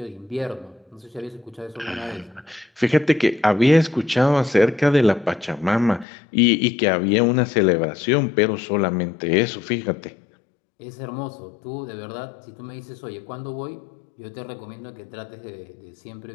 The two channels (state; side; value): drops out; right; at 6.1 s